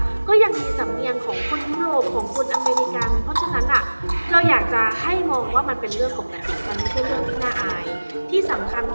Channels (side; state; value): both; inverted; correlation -1.00